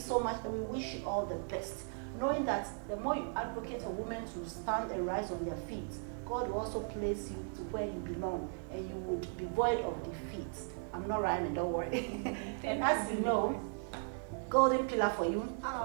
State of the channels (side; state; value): left; silent; 53 dB below the other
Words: much, and we wish you all the best. Knowing that the more you advocate for women to stand and rise on their feet, God will also place you to where you belong, and you would be void of defeat. I'm not rhyming, don't worry. And as you know, golden pillar for you.